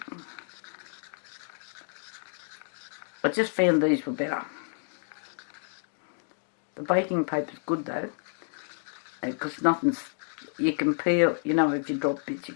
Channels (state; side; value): silent; right; digital silence